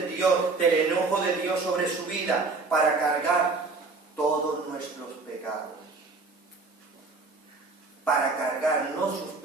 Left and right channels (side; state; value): left; quieter; 4.0 dB